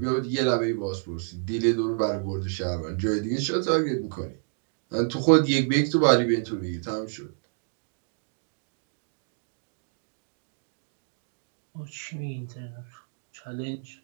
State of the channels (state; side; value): silent; left; digital silence